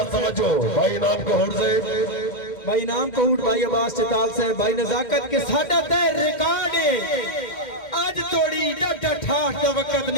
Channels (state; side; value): late; right; 2.1 ms